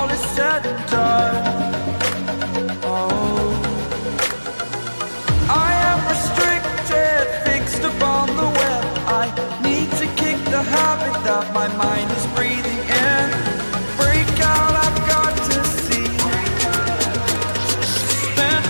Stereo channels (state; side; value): inverted; both; correlation -1.00